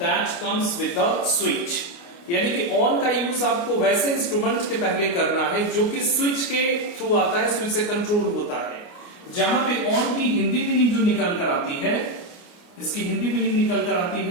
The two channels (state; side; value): late; right; 29 ms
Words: comes with the switch. यानी कि on का use आपको वैसे instrument के पहले करना है जो कि स्विच के थ्रू आता है, स्विच से कंट्रोल होता है। जहां पे ऑन की हिंदी मीनिंग जो निकल कर आती है, इसकी हिंदी मीनिंग निकल कर आती